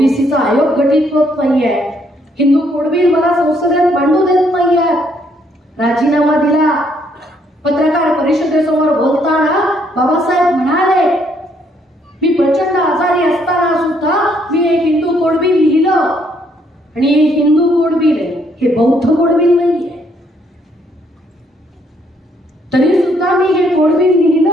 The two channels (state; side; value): normal; both; correlation 0.69